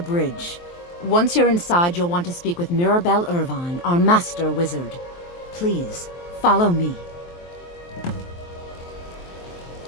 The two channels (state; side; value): late; right; 23 ms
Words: Once you're inside, you'll want to speak with Mirabelle Irvine, our master wizard. Please, follow me.